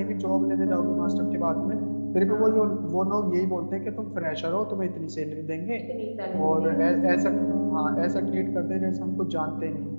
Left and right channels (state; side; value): inverted; both; correlation -1.00